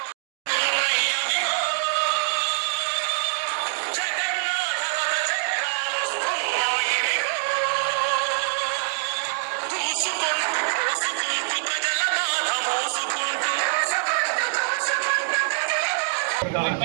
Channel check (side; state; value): left; silent; digital silence